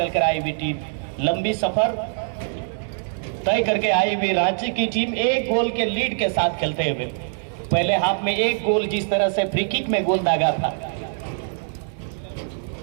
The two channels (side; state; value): left; silent; digital silence